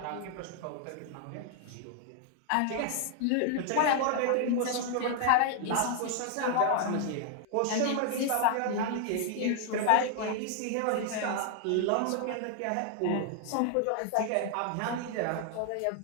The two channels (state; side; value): different; both; correlation 0.00